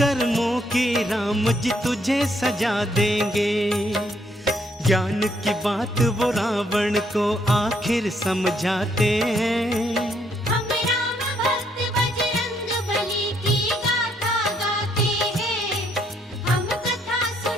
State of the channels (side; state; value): both; normal; correlation 0.71